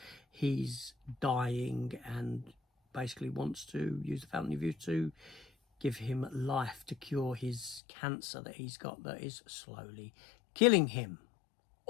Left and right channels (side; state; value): right; drops out; at 7.8 s